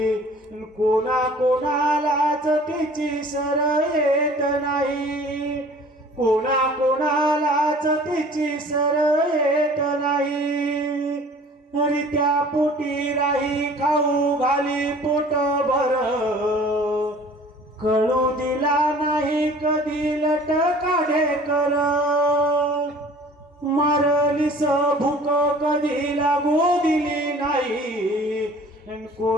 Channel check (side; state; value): both; normal; correlation 0.48